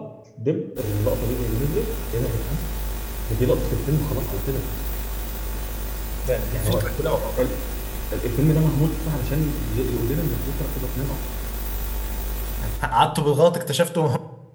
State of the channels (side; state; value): both; identical; correlation 1.00